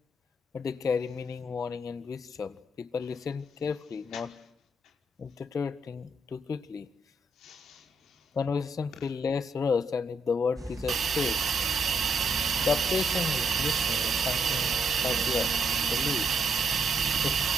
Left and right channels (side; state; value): both; normal; correlation 0.76